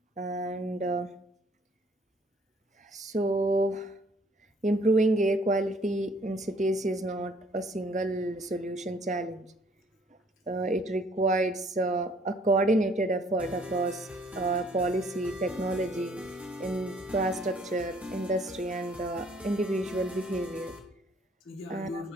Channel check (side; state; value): both; normal; correlation 0.61